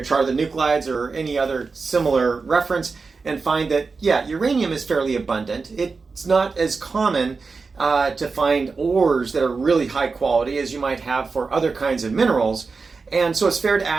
chart of the nuclides or any other similar reference and find that, yeah, uranium is fairly abundant. It's not as common to find ores that are really high quality as you might have for other kinds of minerals. And so it's fair to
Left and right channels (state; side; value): quieter; left; 4.5 dB